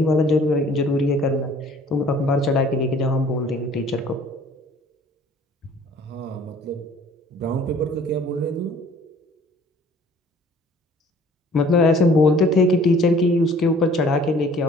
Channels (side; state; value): both; normal; correlation 0.54